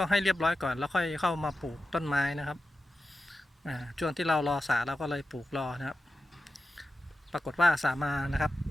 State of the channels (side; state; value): both; normal; correlation 0.93